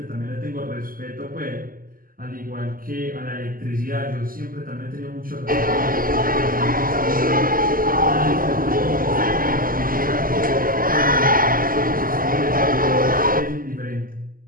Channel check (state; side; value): late; left; 0.41 ms